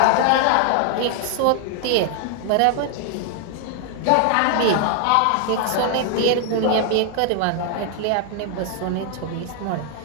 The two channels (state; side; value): different; both; correlation 0.00